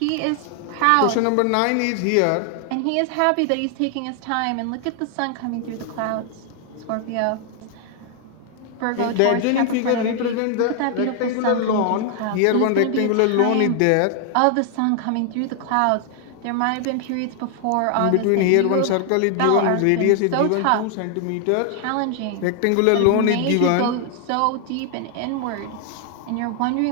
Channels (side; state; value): both; different; correlation 0.00